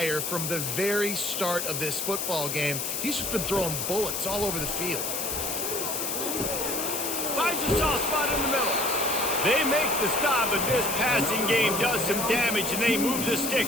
from the very start of this football game. He's just been throwing bullets all over the field. Finds a soft spot in the middle. They make the stop, but this passing game does some damage, and they move the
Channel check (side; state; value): left; noise; hiss, 2 dB below the sound